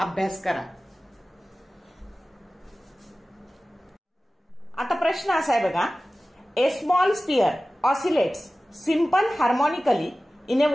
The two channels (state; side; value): normal; both; correlation 0.96